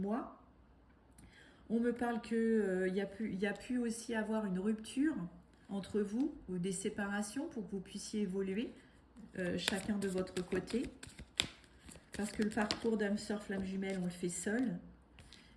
On me parle qu'il y a pu aussi avoir une rupture entre vous ou des séparations pour que vous puissiez évoluer chacun de votre côté. Parce que le parcours d'âme sœur flamme jumelle, on le fait seul.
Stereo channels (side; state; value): both; identical; correlation 1.00